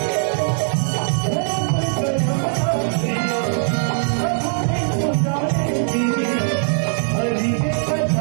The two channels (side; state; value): left; silent; digital silence